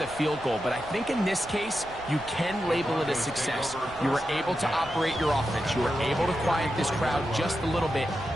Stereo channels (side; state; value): right; noise; rumble, 19 dB below the sound